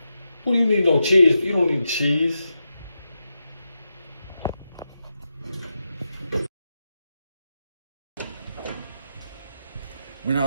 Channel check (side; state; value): both; inverted; correlation -0.88